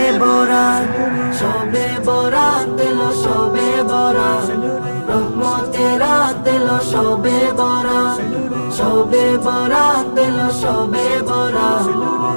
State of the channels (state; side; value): inverted; both; correlation -1.00